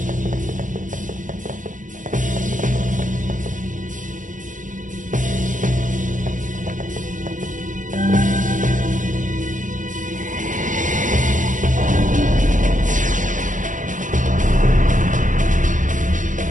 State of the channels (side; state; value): left; late; 0.37 ms